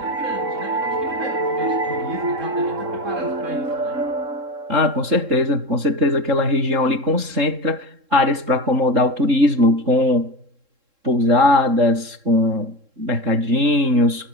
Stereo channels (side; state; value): left; late; 3.7 ms